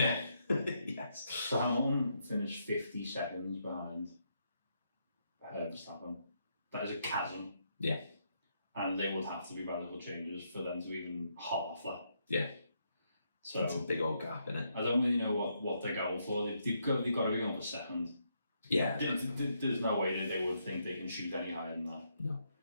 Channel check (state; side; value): inverted; both; correlation -0.77